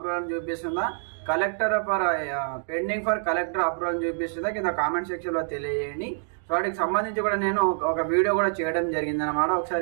అని చూపిస్తుందా, పెండింగ్ ఫర్ కలెక్టర్ అప్రూవల్ అని చూపిస్తుందా కింద కామెంట్ సెక్షన్లో తెలియజేయండి. వాటికి సంబంధించి కూడా నేను ఒక వీడియో కూడా చేయడం జరిగింది అనమాట.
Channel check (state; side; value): silent; left; digital silence